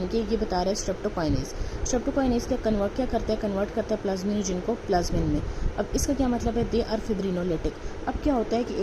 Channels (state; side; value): identical; both; correlation 1.00